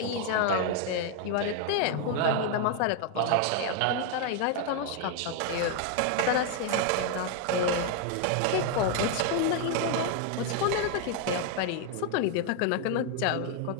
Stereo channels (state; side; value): different; both; correlation 0.01